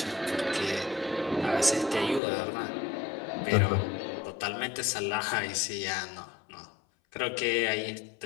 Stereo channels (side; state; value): right; drops out; at 2.2 s